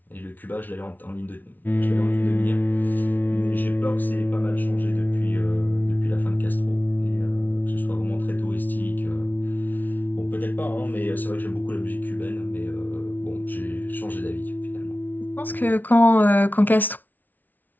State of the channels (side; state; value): right; late; 0.083 ms